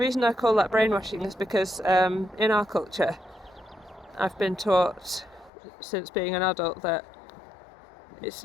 I call that brainwashing is because in our culture I've been taught since being an adult that it's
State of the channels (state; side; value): drops out; right; at 5.5 s